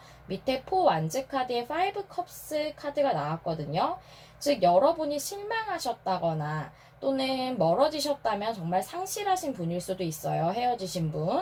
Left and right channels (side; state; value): both; identical; correlation 1.00